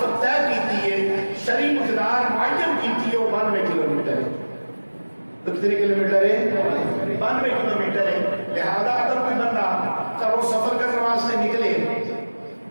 طے کی ہے, شرعی مقدار معین کی ہے, وہ 92 کلومیٹر ہے. تو کتنے کلومیٹر ہے؟ 92 کلومیٹر ہے. لہذا اگر کوئی بندہ گھروں سفر کرنے واسطے نکلے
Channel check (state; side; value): inverted; both; correlation -1.00